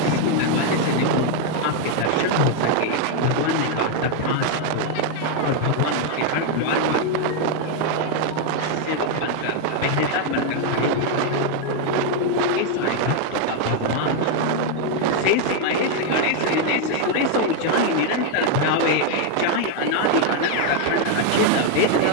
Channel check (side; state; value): both; different; correlation 0.00